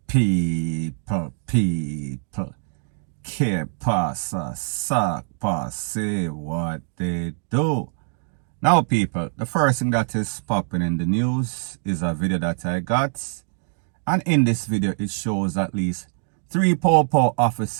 Que pasa, suck, say what they do. Now, people, the first thing that is popping in the news is a video that I got. And in this video, it shows at least 3 Popo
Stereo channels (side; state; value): left; silent; digital silence